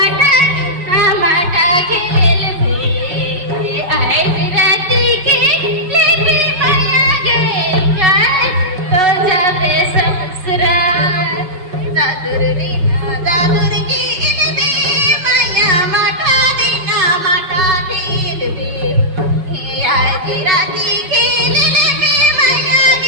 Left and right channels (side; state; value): left; late; 5.4 ms